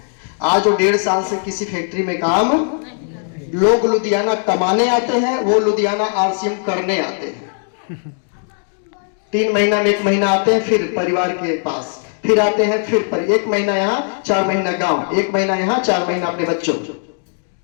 आज वो 1.5 साल से किसी फैक्ट्री में काम, लोग लुधियाना कमाने आते हैं, वो लुधियाना आरसीएम करने आते हैं। 3 महीना में 1 महीना आते हैं, फिर परिवार के पास, फिर आते हैं, फिर पर 1 महीना यहाँ, 4 महीना गांव, 1 महीना यहाँ, 4 महीना अपने बच्चों।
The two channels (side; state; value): right; silent; 67 dB below the other